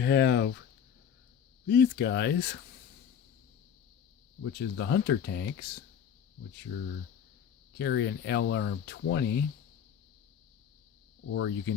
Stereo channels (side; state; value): right; quieter; 8.1 dB